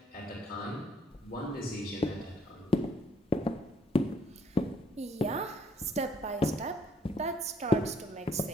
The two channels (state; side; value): normal; both; correlation 0.66